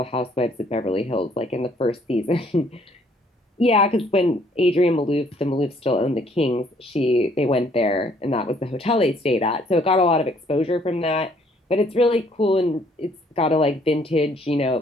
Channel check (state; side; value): normal; both; correlation 0.64